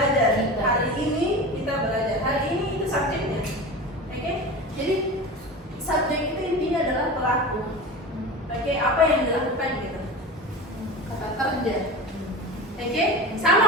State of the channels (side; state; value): both; normal; correlation 0.30